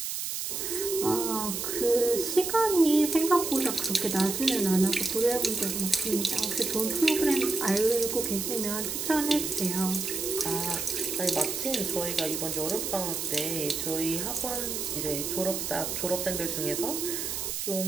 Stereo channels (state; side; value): noise; right; hiss, 3 dB below the sound